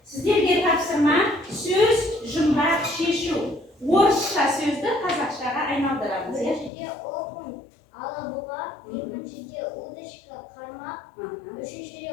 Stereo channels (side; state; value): right; drops out; at 6.7 s